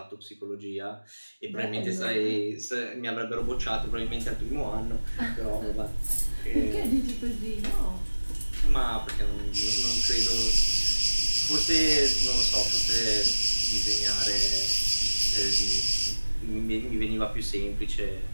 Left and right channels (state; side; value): inverted; both; correlation -1.00